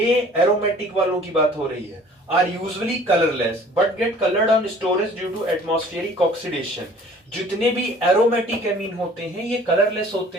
एरोमेटिक वालों की बात हो रही है, are usually colourless but get coloured on storage due to atmospheric oxidation. जितने भी एरोमेटिक एमीन होते हैं ये कलरलेस होते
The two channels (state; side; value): normal; both; correlation 0.51